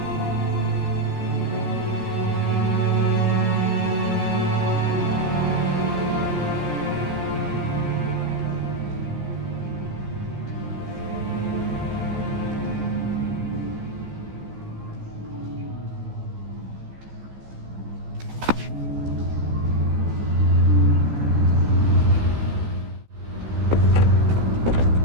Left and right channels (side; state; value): left; late; 14 ms